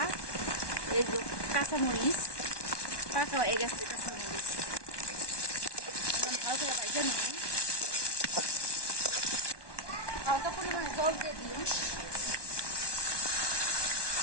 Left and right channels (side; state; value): right; late; 1.2 ms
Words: এই যে কাঁচামরিচ পাকা হয়ে গেছে। কাঁচামরিচ ভালো করে ভাইজে নিই। হালকা পরিমাণে জল দিয়ে দিই।